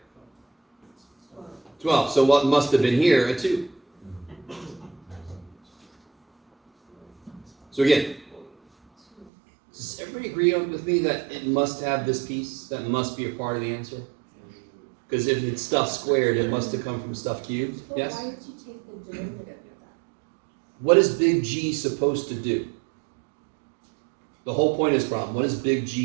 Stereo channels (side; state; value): left; drops out; at 9.3 s